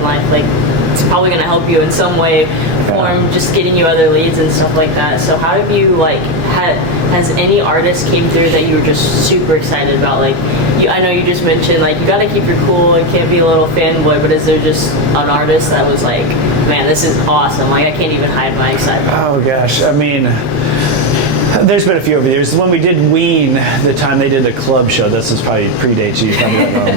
life, it's probably going to help you in some way, form just getting you other leads and stuff like that. So how have you has any artist came through that you were just super excited about? I know you just mentioned you got to keep your cool and can't be a little fanboy, but is there just an artist that was like, man, this is awesome? I can't even hide my excitement. Oh gosh, I mean, there's been a few over the years. When we did Ween, the time they did the club show, this is probably predates you probably don't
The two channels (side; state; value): left; late; 9.8 ms